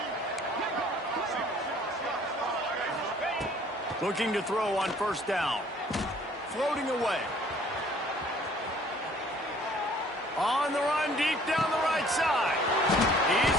Looking to throw on first down. Floating away. On the run, deep down the right side.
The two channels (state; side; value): normal; both; correlation 0.56